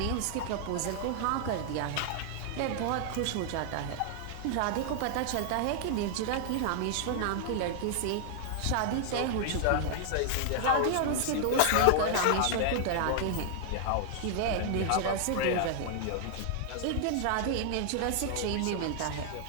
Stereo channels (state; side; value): different; both; correlation 0.00